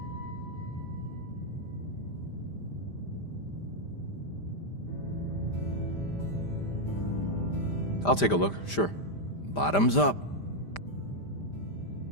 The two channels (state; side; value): late; right; 5.0 ms